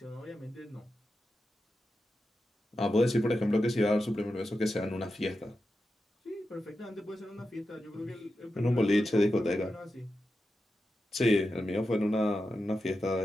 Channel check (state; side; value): normal; both; correlation 0.90